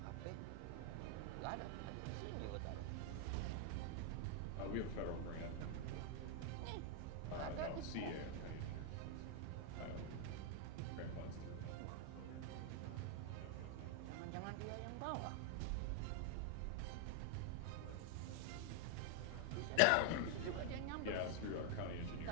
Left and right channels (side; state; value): both; different; correlation 0.00